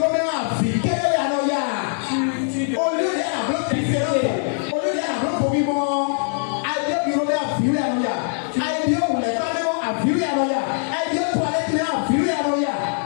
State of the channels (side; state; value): right; silent; 64 dB below the other